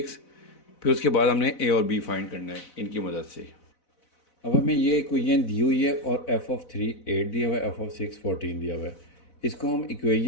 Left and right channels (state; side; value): late; right; 4.0 ms